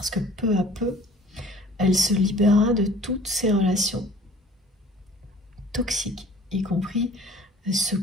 que peu à peu, elle se libérera de toutes ces relations toxiques, y compris ce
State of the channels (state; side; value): normal; both; correlation 0.50